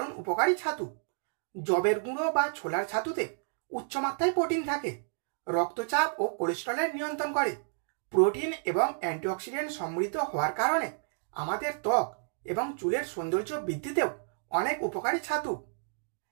উপকারী ছাতু। যবের গুঁড়ো বা ছোলার ছাতুতে উচ্চমাত্রায় প্রোটিন থাকে, রক্তচাপ ও কোলেস্টেরলের নিয়ন্ত্রণ করে। প্রোটিন এবং অ্যান্টিঅক্সিডেন্ট সমৃদ্ধ হওয়ার কারণে আমাদের ত্বক এবং চুলের সৌন্দর্য বৃদ্ধিতেও অনেক উপকারী ছাতু।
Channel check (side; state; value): left; silent; digital silence